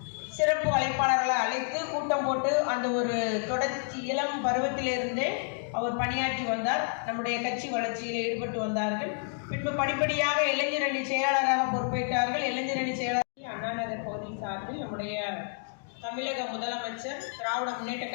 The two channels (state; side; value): silent; right; 58 dB below the other